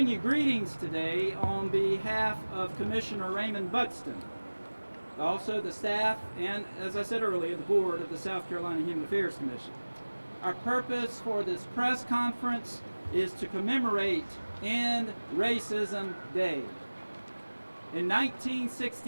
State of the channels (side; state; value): both; inverted; correlation -1.00